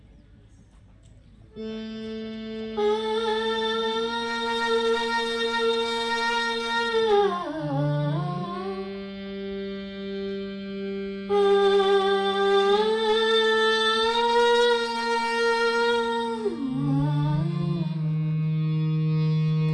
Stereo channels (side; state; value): both; identical; correlation 1.00